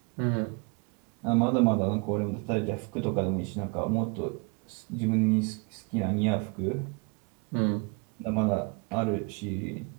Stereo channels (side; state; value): left; quieter; 31.1 dB